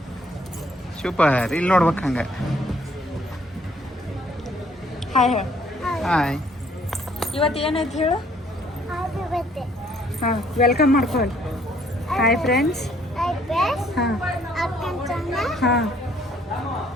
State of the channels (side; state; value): both; normal; correlation 0.63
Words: ಸೂಪರ್. ಇಲ್ಲಿ ನೋಡ್ಬೇಕು ಹಂಗೆ. ಹಾಯ್ ಹೇಳು. ಹಾಯ್. ಇವತ್ತು ಏನೈತೆ ಹೇಳು? ಹಾಂ, ವೆಲ್ಕಮ್ ಮಾಡ್ಕೊಳ್ಳಿ. Hi friends. ಹಾಂ ಹಾಂ